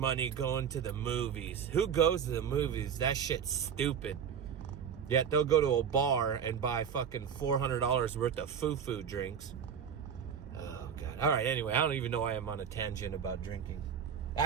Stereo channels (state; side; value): quieter; left; 7.6 dB